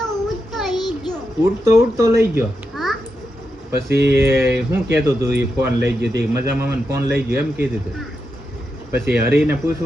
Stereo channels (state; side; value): normal; both; correlation 0.86